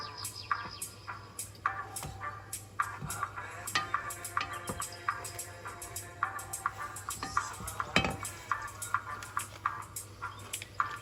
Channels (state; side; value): identical; both; correlation 1.00